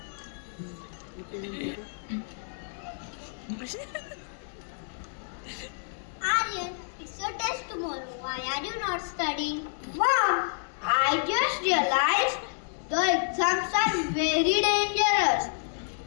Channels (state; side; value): silent; right; digital silence